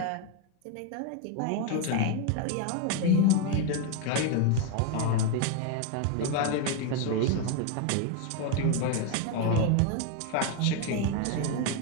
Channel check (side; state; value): both; different; correlation 0.01